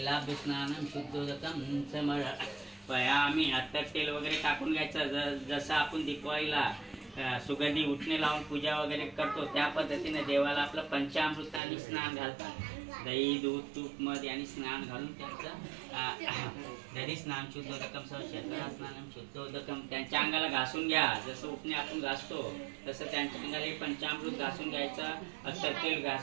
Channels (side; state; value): left; drops out; at 11.6 s